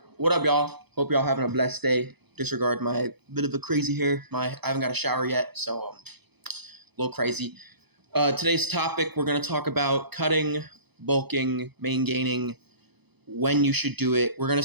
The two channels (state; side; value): late; left; 0.98 ms